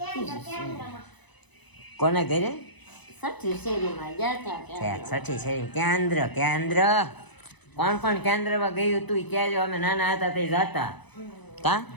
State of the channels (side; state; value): right; late; 1.0 ms